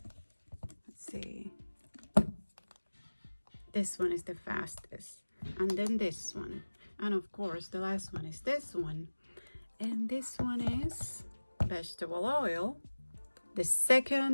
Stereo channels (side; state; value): both; inverted; correlation -1.00